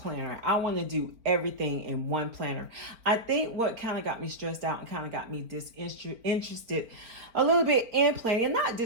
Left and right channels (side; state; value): left; late; 4.5 ms